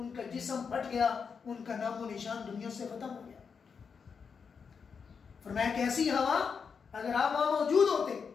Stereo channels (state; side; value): quieter; right; 6.0 dB